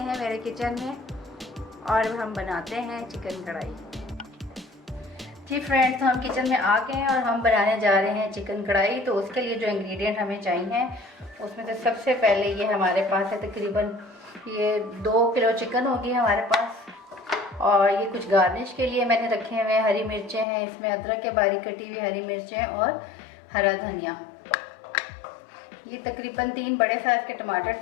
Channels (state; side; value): drops out; right; at 20.5 s